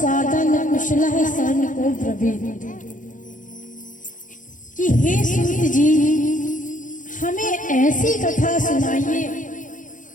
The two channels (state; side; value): late; right; 0.38 ms